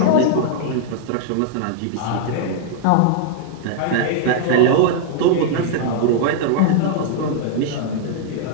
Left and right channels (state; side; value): different; both; correlation -0.01